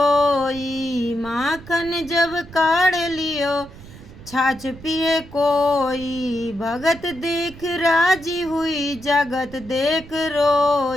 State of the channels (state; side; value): noise; right; rumble, 18 dB below the sound